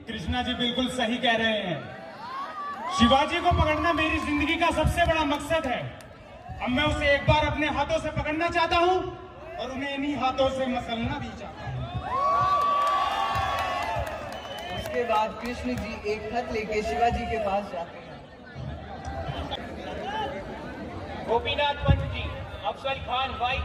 कृष्णा जी बिल्कुल सही कह रहे हैं। शिवाजी को पकड़ना मेरी जिंदगी का सबसे बड़ा मकसद है। अब मैं उसे एक बार अपने हाथों से पकड़ना चाहता हूँ और उन्हें इन्हीं हाथों से मसलना भी चाहता हूँ। उसके बाद कृष्ण जी एक खत लेके शिवाजी के पास जाते हैं। गोपीनाथ पंत जी, अफजल खान वाई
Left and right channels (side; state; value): both; identical; correlation 1.00